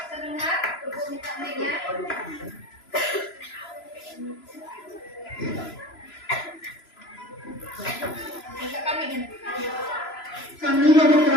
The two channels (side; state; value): right; late; 3.0 ms